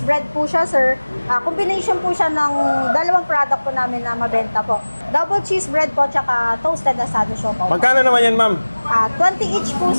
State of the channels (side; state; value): both; inverted; correlation -1.00